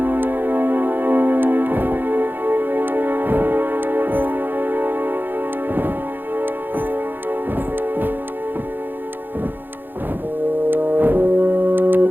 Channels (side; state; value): left; late; 0.093 ms